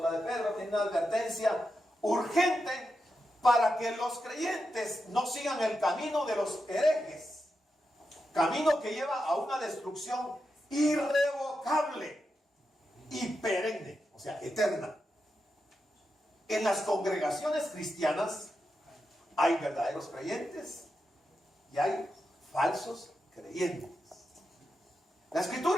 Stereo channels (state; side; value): normal; both; correlation 0.87